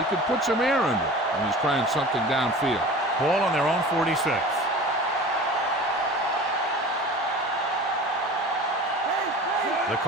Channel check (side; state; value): both; normal; correlation 0.38